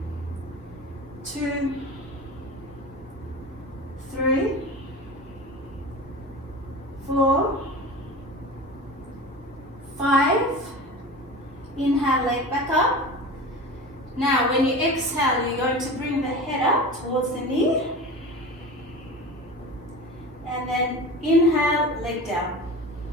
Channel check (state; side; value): normal; both; correlation 0.33